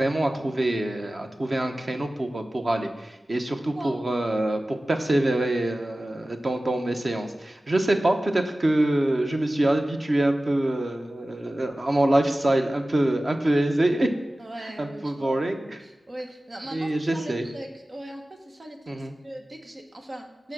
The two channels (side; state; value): both; normal; correlation 0.96